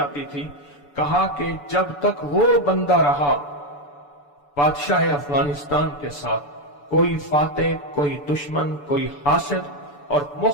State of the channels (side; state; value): right; late; 6.9 ms